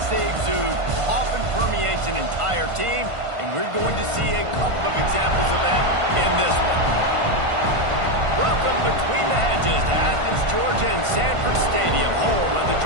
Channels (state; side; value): late; left; 1.5 ms